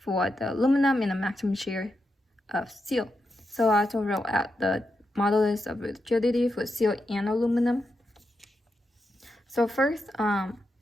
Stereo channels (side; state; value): both; normal; correlation 0.86